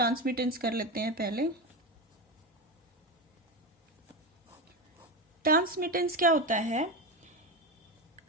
कर लेते हैं पहले। ट्रांसमिटेंस क्या होता है?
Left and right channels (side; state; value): both; normal; correlation 0.18